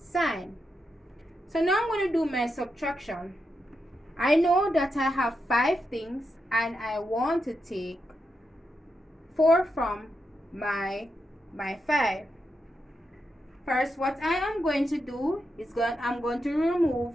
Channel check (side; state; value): both; normal; correlation 0.86